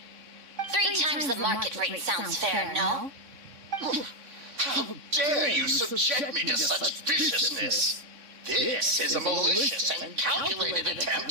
3 times the market rate sounds fair, no? How dare you subject me to such viciousness? This is a malicious and calculated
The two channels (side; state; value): left; late; 3.6 ms